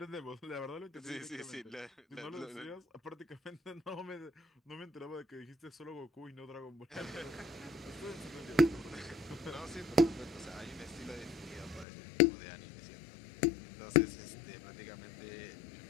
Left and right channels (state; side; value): drops out; right; at 11.9 s